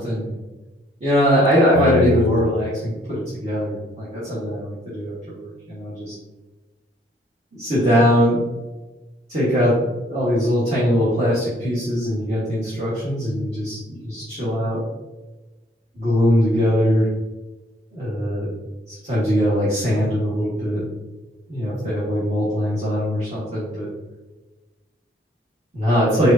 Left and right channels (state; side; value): normal; both; correlation 0.64